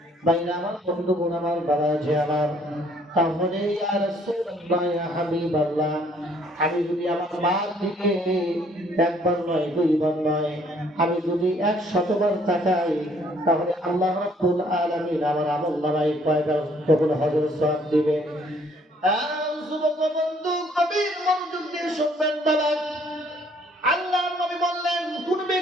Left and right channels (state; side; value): normal; both; correlation 0.62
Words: বাইরে আমার বন্ধুগণ আমার বাবাজি আমার তাহলে ইয়া রাসূলুল্লাহ ইয়া হাবিবাল্লাহ আমি যদি আমার মার দিকে একবার নয় দুইবার নয় আমি যদি 100 বার তাকাই তাহলে আল্লাহ রাব্বুল আলামিন আমার আমলনামায় কয়বার কবুল হজের সওয়াব দিবে যুবক বন্ধু কবির মনোযোগ দিয়ে শুনবেন বাবা আল্লাহর নবী বললেন কোন